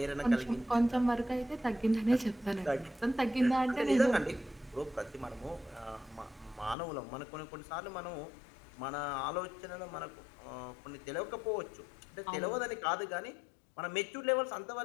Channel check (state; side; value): drops out; right; at 6.8 s